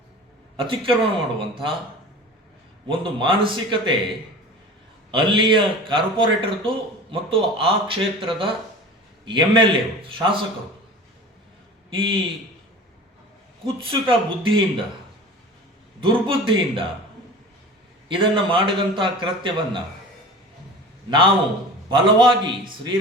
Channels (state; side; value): normal; both; correlation 0.37